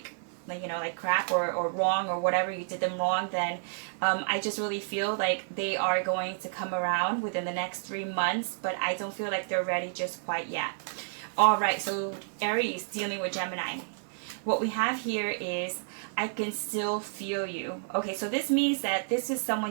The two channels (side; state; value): left; silent; 58 dB below the other